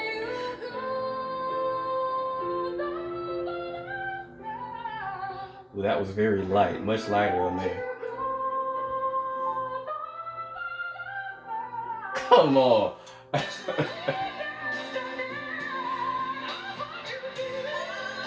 Well, that was very light, much lighter on there. Come on.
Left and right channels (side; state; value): both; identical; correlation 1.00